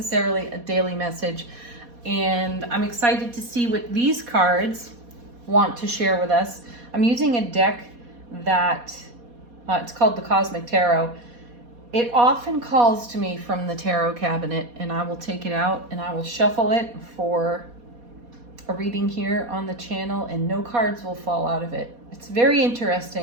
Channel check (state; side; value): late; left; 4.2 ms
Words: a daily message. And I'm excited to see what these cards want to share with us. I'm using a deck that, it's called the Cosmic Tarot. It often calls to me from the tarot cabinet, and I will take it out and I will shuffle it for a reading here on the channel, and no cards will fall out of it. It's very